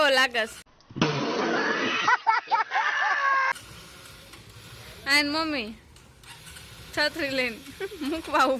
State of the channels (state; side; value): identical; both; correlation 1.00